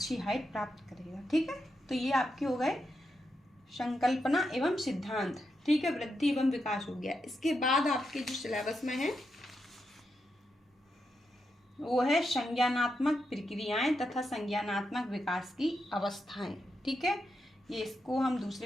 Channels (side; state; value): both; normal; correlation 0.85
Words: हाइट प्राप्त करेगा। ठीक है, तो ये आपके हो गए संकल्पना एवं सिद्धांत। ठीक है, वृद्धि एवं विकास हो गया। इसके बाद आपके जो सिलेबस में है वो है संज्ञानात्मक प्रक्रियाएं तथा संज्ञानात्मक विकास की अवस्थाएं। ठीक है, ये इसको हम